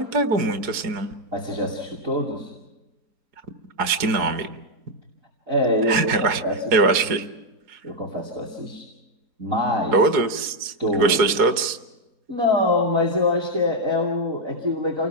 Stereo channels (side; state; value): left; late; 4.7 ms